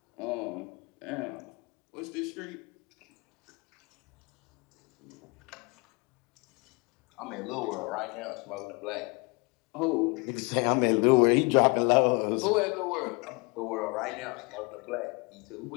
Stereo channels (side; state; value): right; quieter; 29.9 dB